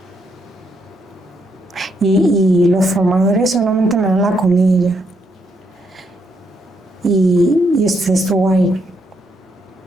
y los formadores solamente me dan la comida. Y usted estuvo ahí,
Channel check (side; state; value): both; normal; correlation 0.76